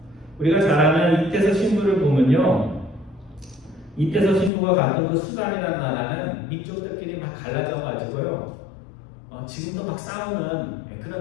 우리가 잘 아는 이태서 신부를 보면요 이때서 신부가 갔던 그 수단이라는 나라는 민족들끼리 막 갈라져 가지고요. 지금도 막 싸우는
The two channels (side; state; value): right; drops out; at 4.5 s